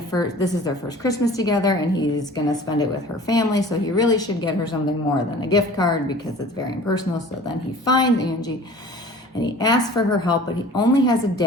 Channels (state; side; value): normal; both; correlation 0.44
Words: this is their first Christmas together, and he's going to spend it with her family, so he really should get her something more than a gift card because it's very impersonal. So then he finds Anji, and he asks for her help, but he only has a